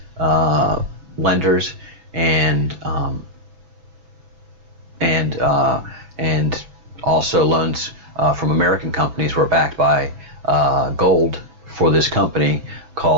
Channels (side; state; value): left; late; 6.0 ms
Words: lenders and also loans from American companies were backed by gold for this company